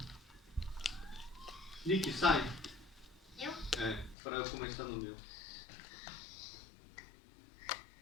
Nick, sai. Eu? É, pra eu começar no meu.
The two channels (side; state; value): right; drops out; at 4.2 s